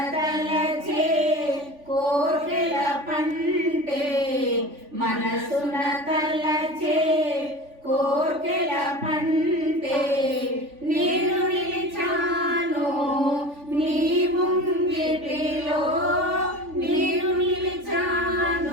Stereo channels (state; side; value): late; left; 3.5 ms